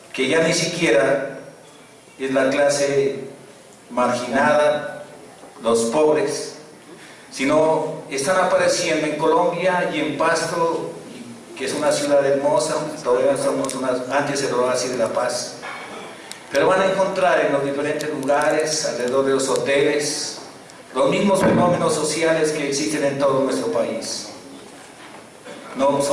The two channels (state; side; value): identical; both; correlation 1.00